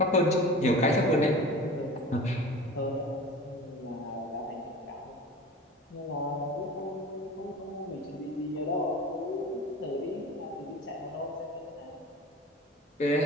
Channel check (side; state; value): both; normal; correlation 0.37